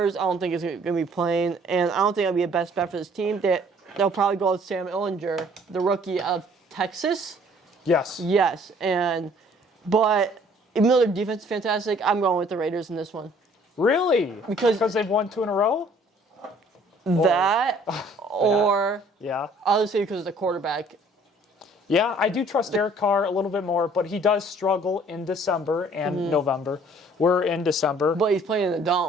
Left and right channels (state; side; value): normal; both; correlation 0.57